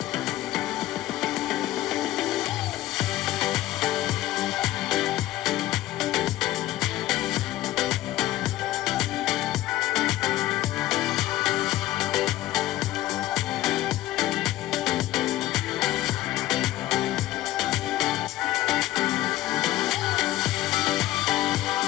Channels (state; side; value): quieter; right; 15.3 dB